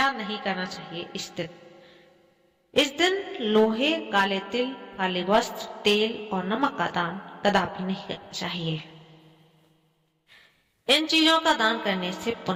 नहीं करना चाहिए इस दिन? इस दिन लोहे, काले तिल, काले वस्त्र, तेल और नमक का दान कदापि नहीं करना चाहिए। इन चीजों का दान करने से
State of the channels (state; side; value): identical; both; correlation 1.00